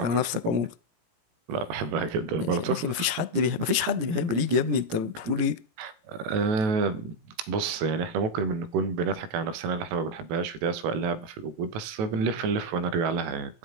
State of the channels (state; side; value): late; left; 18 ms